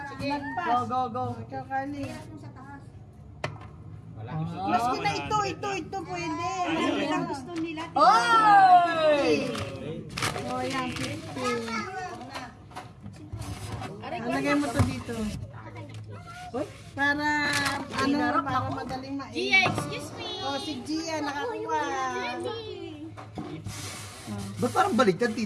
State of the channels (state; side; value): identical; both; correlation 1.00